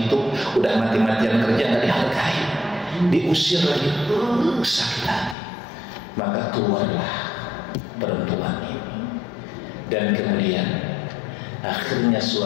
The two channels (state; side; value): drops out; right; at 5.4 s